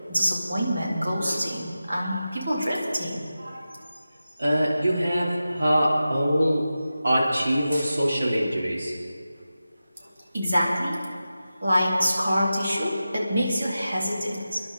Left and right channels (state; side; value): inverted; both; correlation -0.93